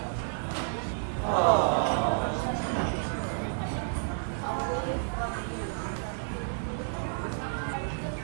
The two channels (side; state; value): left; silent; digital silence